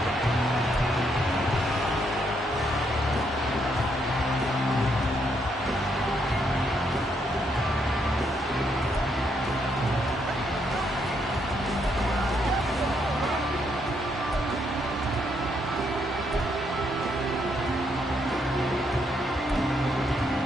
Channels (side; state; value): both; normal; correlation 0.75